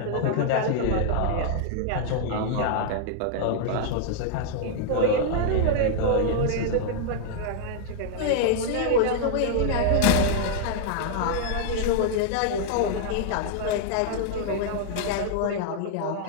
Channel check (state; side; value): different; both; correlation -0.01